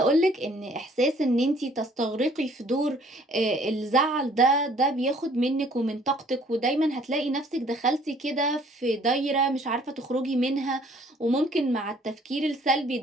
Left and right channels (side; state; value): both; normal; correlation 0.58